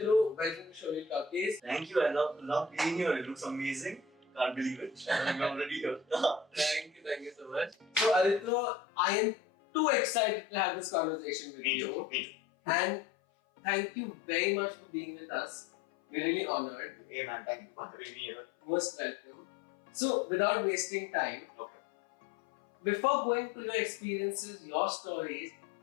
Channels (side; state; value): right; drops out; at 8.5 s